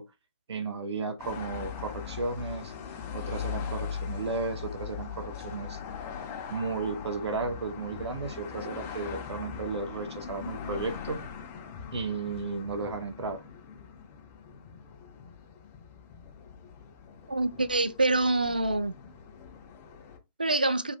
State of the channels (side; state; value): both; inverted; correlation -0.58